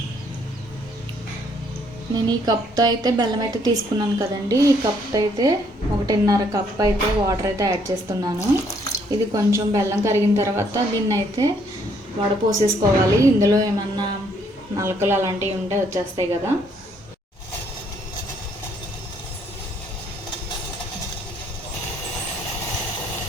నేను ఈ కప్తో అయితే బెల్లం అయితే తీసుకున్నాను కదండి. ఈ కప్తో అయితే 1.5 కప్ అయితే వాటర్ అయితే యాడ్ చేస్తున్నాను. ఇది కొంచెం బెల్లం కరిగిన తర్వాత దీన్ని అయితే వడపోసేసుకోవాలి. ఇందులో ఏమన్నా నలకలు అలాంటివి ఉంటే వచ్చేస్తాయి కదా.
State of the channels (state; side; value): normal; both; correlation 0.67